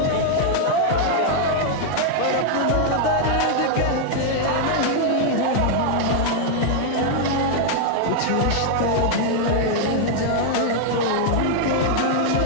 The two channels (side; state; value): both; different; correlation 0.00